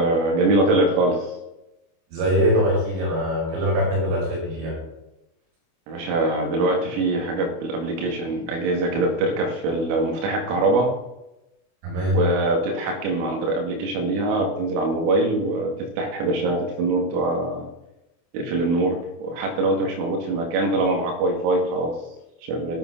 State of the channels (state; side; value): late; left; 24 ms